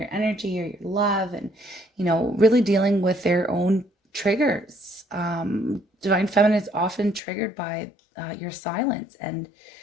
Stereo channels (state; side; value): drops out; right; at 7.2 s